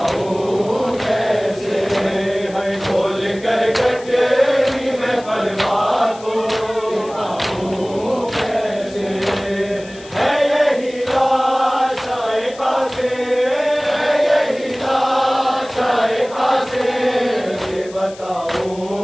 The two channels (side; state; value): left; noise; hiss, 20 dB below the sound